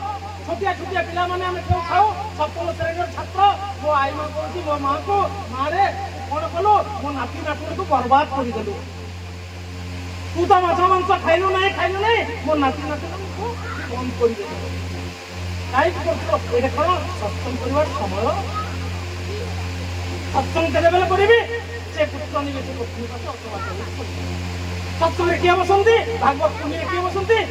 ଛୋଟିଆ ଛୋଟିଆ ପିଲାମାନେ ଆମେ କେଉଁ ଖାଉ ସପ୍ତମ ଶ୍ରେଣୀର ଛାତ୍ର ମୋ ଆଈ ମା କହୁଛି ମୋ ମାଆକୁ ମାରେ କଣ କଲୁ ମୋ ନାତି ନାତୁଣୀକୁ ବର୍ବାଦ କରିଦେଲୁ ତୁ ତ ମାଛ ମାଂସ ଖାଇଲୁ ନାହିଁ ମୋ ନାତି ନାତୁଣୀକୁ ବନ୍ଦ କରିଦେଲୁ କାହିଁକି କରୁଥିଲ ଏଇଟା କଣ ସତ୍ସଙ୍ଗ କରିବାର ସମୟ ସତ୍ସଙ୍ଗ କେତେବେଳେ କରିବି ସେ ପୁତ୍ର ନିବେଶ ପତ୍ନୀ ସତ୍ସଙ୍ଗରେ କିଏ ବସନ୍ତି ଭାଗବତ ପୁଣ୍ୟରେ କିଏ ବସନ୍ତି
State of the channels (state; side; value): identical; both; correlation 1.00